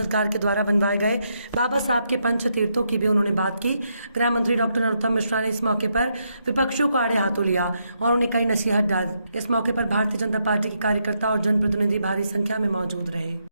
के द्वारा बनवाए गए बाबा साहब के पंच तीर्थों की भी उन्होंने बात की। गृह मंत्री डॉक्टर नरोत्तम मिश्रा ने इस मौके पर विपक्षियों को आड़े हाथों लिया और उन्हें कई नसीहत डाली। इस मौके पर भारतीय जनता पार्टी के कार्यकर्ता और जनप्रतिनिधि भारी संख्या में मौजूद रहे।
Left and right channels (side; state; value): both; inverted; correlation -0.79